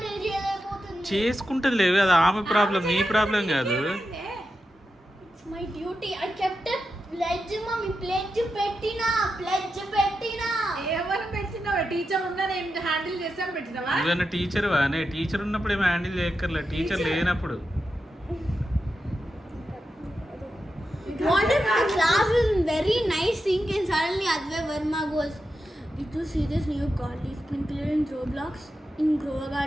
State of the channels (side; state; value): both; normal; correlation 0.89